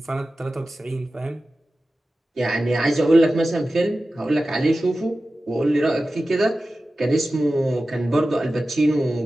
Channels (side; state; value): both; normal; correlation 0.94